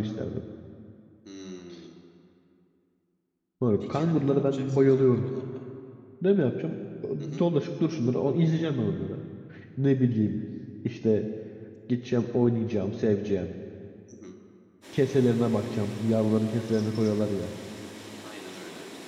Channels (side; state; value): both; identical; correlation 1.00